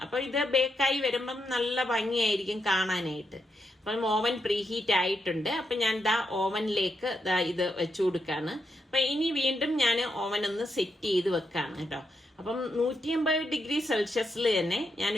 അപ്പൊ ഇത് ബേക്കായി വരുമ്പം നല്ല ഭംഗിയായിരിക്കും കാണാനായിട്ട്. അപ്പം ഓവൻ പ്രീഹീറ്റ് ആയിട്ടുണ്ട്. അപ്പൊ ഞാൻ ഓവനിലേക്ക് ഇത് വെച്ചു കൊടുക്കാണ്. അപ്പൊ ഇനി വീണ്ടും ഞാൻ ഓവൻ ഒന്ന് സെറ്റ് ചെയ്ത് വെക്കാണ് കേട്ടോ. അപ്പം 180 ഡിഗ്രി സെൽഷ്യസിൽ തന്നെ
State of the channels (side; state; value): both; normal; correlation 0.82